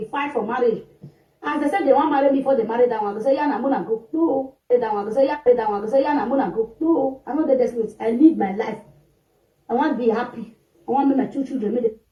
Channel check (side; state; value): both; identical; correlation 1.00